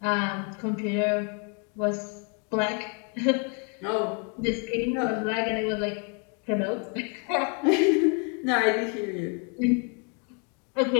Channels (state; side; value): quieter; right; 35.2 dB